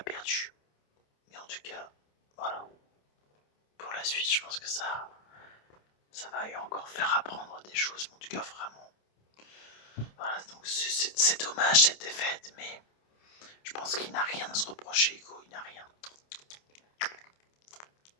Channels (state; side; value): late; right; 28 ms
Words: Mais en tout cas, voilà. Pour la suite, je pense que ça va lui encore faire apprendre des choses. Mais en tout cas, vraiment. Voilà, donc c'est dommage cette défaite, mais je pense qu'il n'a rien à se reprocher, Hugo. Il n'a rien.